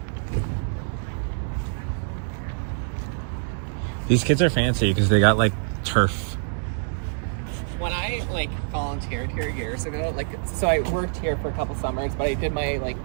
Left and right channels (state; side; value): silent; left; digital silence